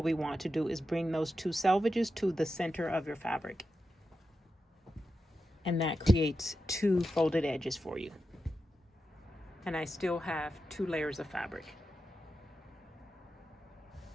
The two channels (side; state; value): both; normal; correlation 0.90